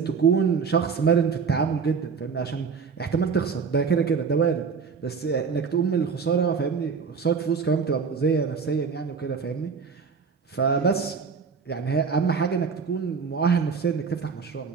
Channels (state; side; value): quieter; left; 5.6 dB